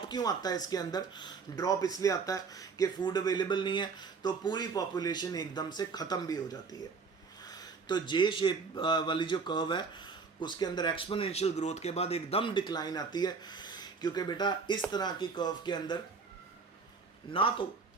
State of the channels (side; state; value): left; quieter; 4.9 dB